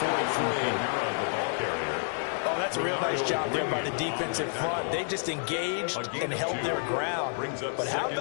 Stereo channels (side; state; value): right; silent; 58 dB below the other